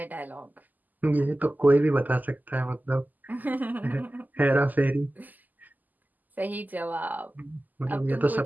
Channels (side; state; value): left; late; 0.083 ms